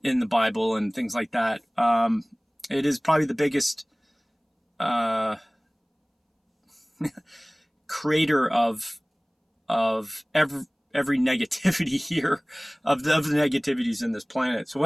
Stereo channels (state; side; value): identical; both; correlation 1.00